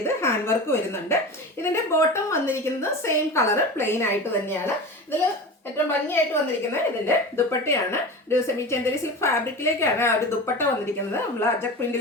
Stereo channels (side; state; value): both; normal; correlation 0.30